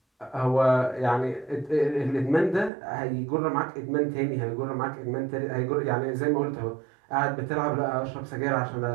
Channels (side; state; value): left; drops out; at 2.7 s